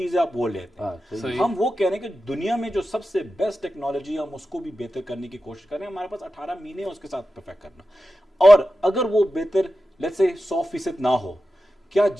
ہے آپ وہ لیتے ہیں. ہم وہ کہہ رہے ہیں کہ دنیا میں جو سب سے بیسٹ ٹیکنالوجی ہے ہم اس کو بھی بہتر کرنے کی کوشش کر رہے ہیں. ہمارے پاس 18 مہینے اس کے ساتھ پرفیکٹ کرنا. اور اگر وہ بہتر لیٹس سے 100% نہ ہو, کیا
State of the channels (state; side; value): normal; both; correlation 0.92